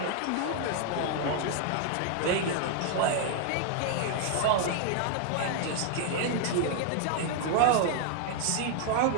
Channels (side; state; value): both; different; correlation 0.00